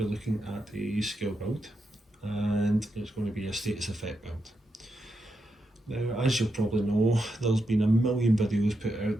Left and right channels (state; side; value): normal; both; correlation 0.85